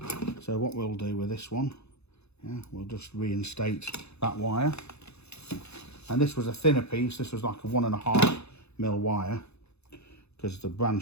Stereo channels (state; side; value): late; right; 0.80 ms